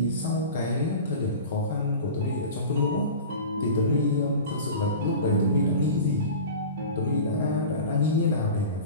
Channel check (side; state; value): both; inverted; correlation -0.34